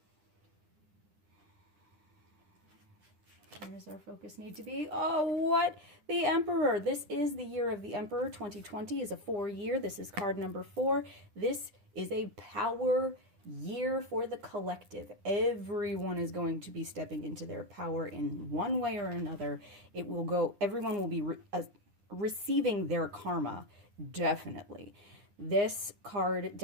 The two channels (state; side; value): late; left; 10 ms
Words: Where does our focus need to be? Oh, what? The Emperor. This is the year of the Emperor. 2020 is a 4-year. This is card number 4. This is a power year for the collective. Everyone is going to be stepping into their power in one way or another. Everyone will be receiving their karma, definitely. This card